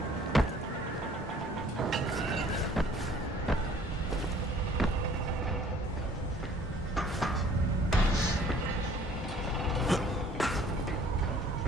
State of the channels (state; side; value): normal; both; correlation 0.55